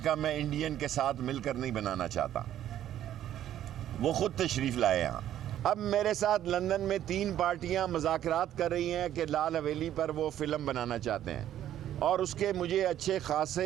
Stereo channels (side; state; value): left; quieter; 11.6 dB